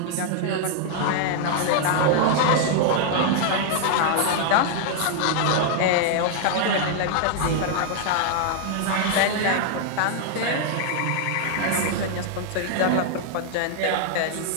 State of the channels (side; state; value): both; different; correlation 0.00